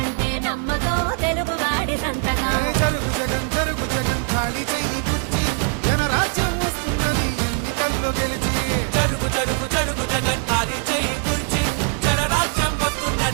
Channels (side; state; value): left; quieter; 34.6 dB